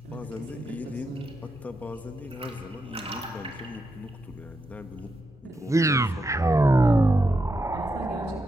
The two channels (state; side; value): normal; both; correlation 0.85